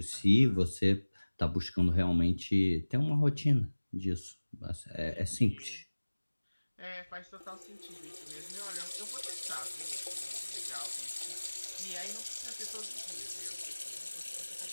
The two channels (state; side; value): inverted; both; correlation -1.00